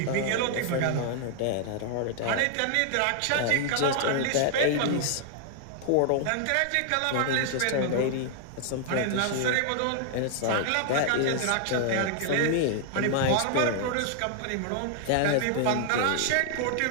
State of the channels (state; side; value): different; both; correlation 0.00